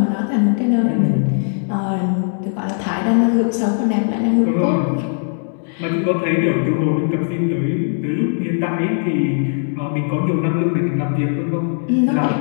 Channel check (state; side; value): silent; right; 67 dB below the other